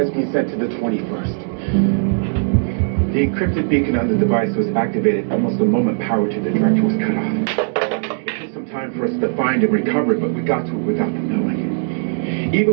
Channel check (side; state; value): left; silent; digital silence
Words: been sent to the 21st. The encrypted beacon on the device was activated almost the moment power to the director was cut off. It took some time for us to find and recover it, but we got to it without them knowing.